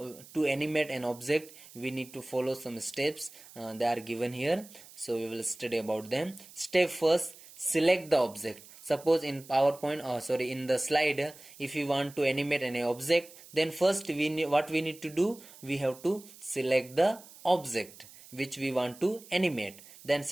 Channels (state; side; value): noise; right; hiss, 20 dB below the sound